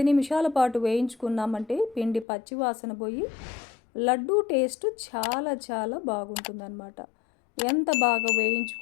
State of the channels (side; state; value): right; drops out; at 2.2 s